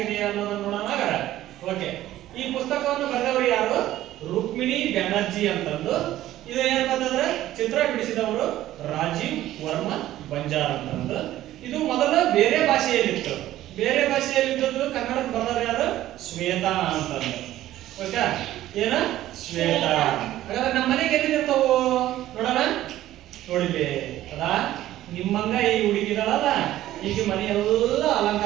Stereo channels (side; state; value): left; quieter; 14.1 dB